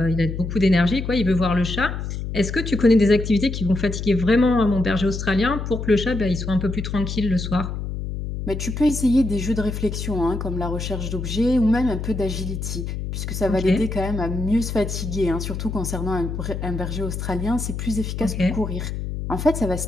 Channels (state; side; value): noise; left; hum, 5 dB below the sound